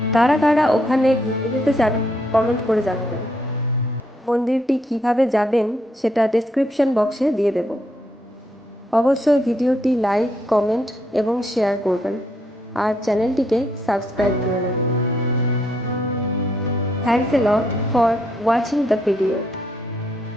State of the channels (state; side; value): normal; both; correlation 0.74